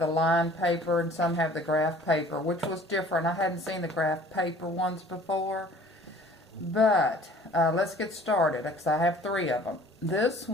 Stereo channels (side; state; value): both; normal; correlation 0.50